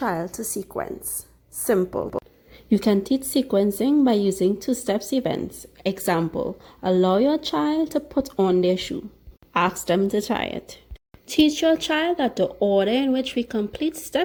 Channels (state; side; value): identical; both; correlation 1.00